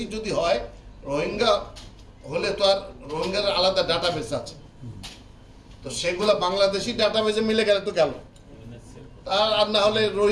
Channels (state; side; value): identical; both; correlation 1.00